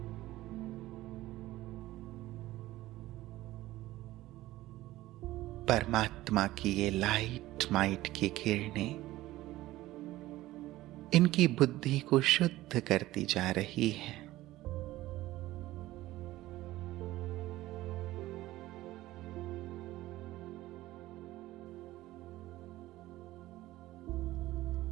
परमात्मा की ये लाइट माइट की किरणें इनकी बुद्धि को शुद्ध करती जा रही है।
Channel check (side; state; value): left; quieter; 16.6 dB